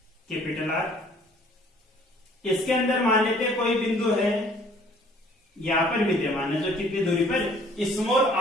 कैपिटल R। इसके अंदर मान लेते हैं कोई बिंदु है यहां पर विद्यमान है जो कितनी दूरी पर, स्मॉल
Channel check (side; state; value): both; normal; correlation 0.56